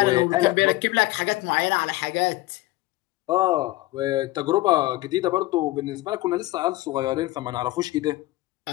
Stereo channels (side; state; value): right; quieter; 18.4 dB